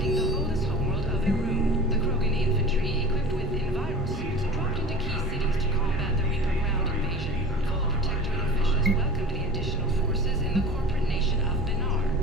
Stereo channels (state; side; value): noise; right; rumble, 18 dB below the sound